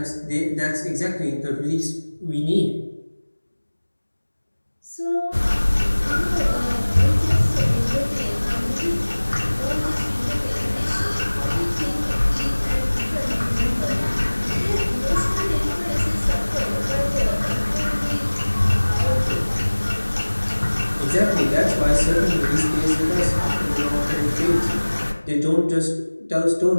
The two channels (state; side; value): inverted; both; correlation -1.00